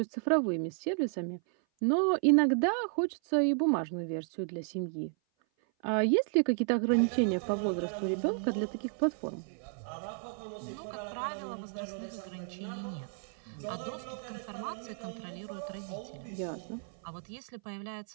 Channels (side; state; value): left; silent; 56 dB below the other